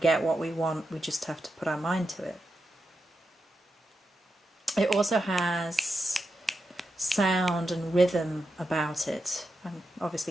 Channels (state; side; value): normal; both; correlation 0.87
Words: what we want, we just have to put our mind to it. It also has sound and rhythm about it. I'm